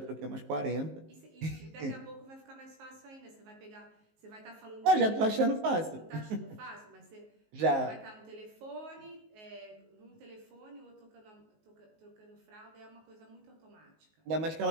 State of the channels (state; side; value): late; left; 19 ms